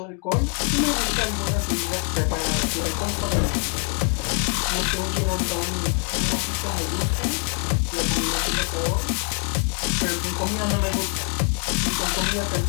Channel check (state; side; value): quieter; right; 38.5 dB